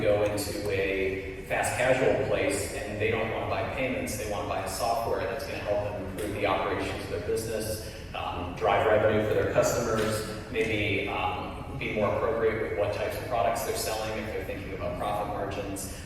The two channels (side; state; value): both; identical; correlation 1.00